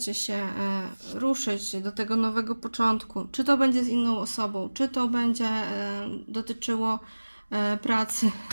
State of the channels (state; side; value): inverted; both; correlation -1.00